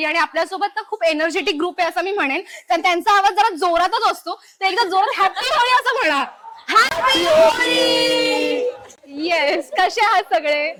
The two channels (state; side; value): identical; both; correlation 1.00